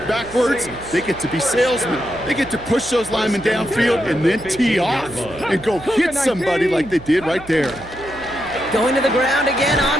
backwards, they get to be salesmen. They get to push those linemen downfield and then tee off and go hit somebody like they did right there. Going to the ground again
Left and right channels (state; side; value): noise; right; hum, 18 dB below the sound